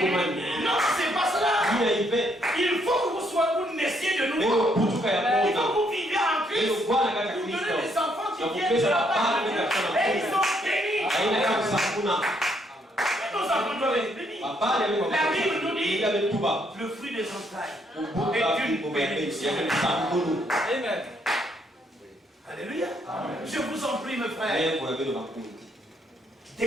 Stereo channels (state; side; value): normal; both; correlation 0.72